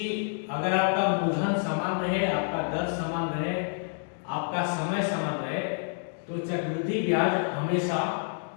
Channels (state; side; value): silent; right; digital silence